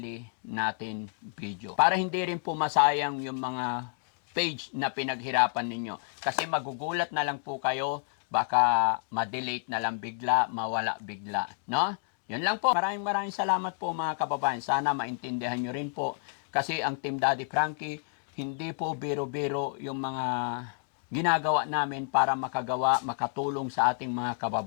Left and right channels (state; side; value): silent; right; 58 dB below the other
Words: natin video. Para hindi rin po masayang yung mga page na pinaghirapan ninyo. Kasi magugulat na lang po kayo, baka ma-delete na lang bigla, mawala bigla. No? Yun lang po. Maraming salamat po mga kababayan. Sana maintindihan nyo rin po. Kasi ang Team Daddy Frankie, hindi po biro-biro yung mga ginagawa namin para makatulong sa ating mga